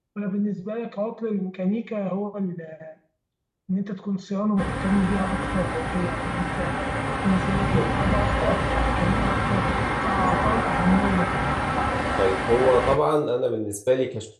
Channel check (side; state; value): both; identical; correlation 1.00